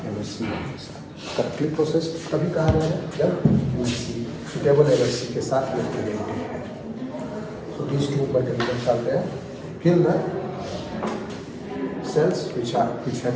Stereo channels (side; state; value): both; identical; correlation 1.00